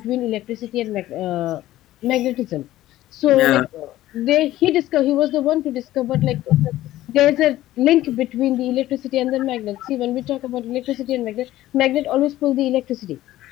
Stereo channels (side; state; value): right; quieter; 15.0 dB